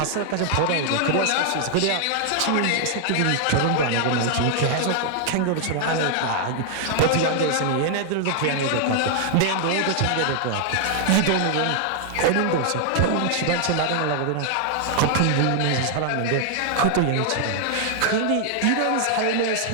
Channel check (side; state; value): both; different; correlation 0.00